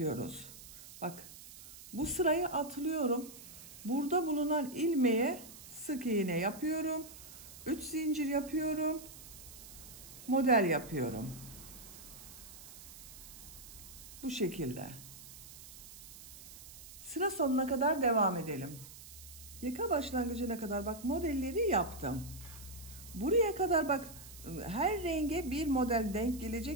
Bak, bu sırayı atlıyorum. Burada bulunan ilmeğe sık iğne yapıyorum. 3 zincir yapıyorum. Model yapıyorum. Bu şekilde. Sıra sonuna kadar devam edelim. Yaka başlangıcına kadar bak modelleri yaptım. Buraya kadar bak, her renge bir model denk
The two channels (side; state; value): right; noise; hiss, 16 dB below the sound